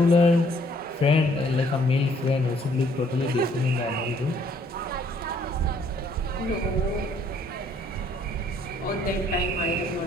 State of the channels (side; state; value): both; normal; correlation 0.64